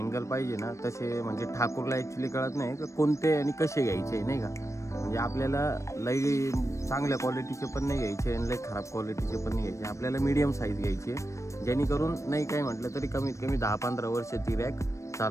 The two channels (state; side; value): late; right; 0.15 ms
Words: पाहिजे ना तसे म्हणजे ठाकूरला ॲक्च्युली कळत नाही का कोणते आणि कसे घ्यायचे नाही का. म्हणजे आपल्याला लई चांगल्या क्वालिटीचे पण नाही घ्यायचे आणि लई खराब क्वालिटीचे पण नाही घ्यायचे. आपल्याला मीडियम साईज घ्यायची आहे, जेणेकरून नाही काय म्हटलं तरी कमीत कमी 10-15 वर्ष ती रॅक